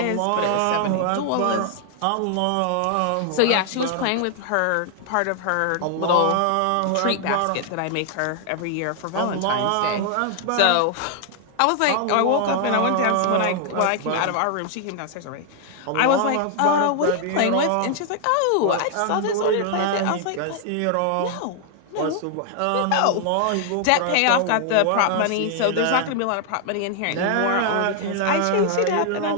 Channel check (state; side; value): different; both; correlation 0.00